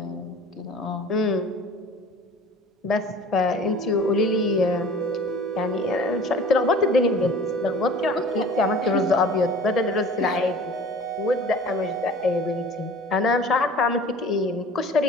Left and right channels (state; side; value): normal; both; correlation 0.44